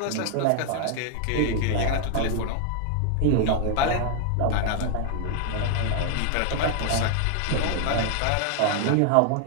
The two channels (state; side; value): different; both; correlation 0.00